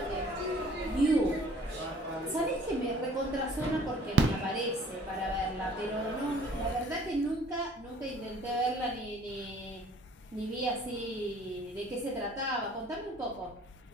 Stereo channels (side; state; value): both; normal; correlation 0.53